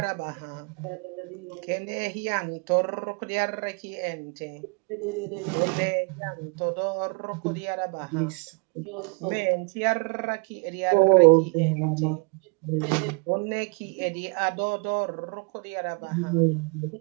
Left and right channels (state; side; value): quieter; left; 32.9 dB